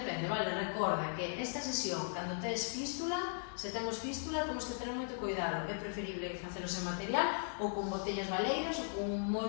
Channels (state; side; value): silent; right; 53 dB below the other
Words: vale? Recorda que esta sesión, cando tes fístula, se temos fístula, temos que ter moito cuidado. É preferible facelo sen material ou con botellas baleiras ou con moi